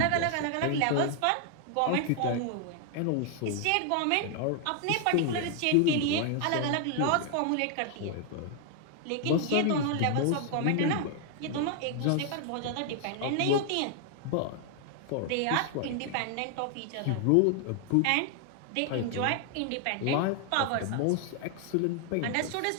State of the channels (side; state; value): both; different; correlation 0.00